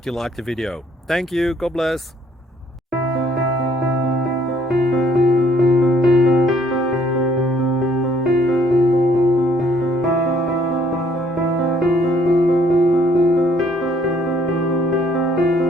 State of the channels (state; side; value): normal; both; correlation 0.64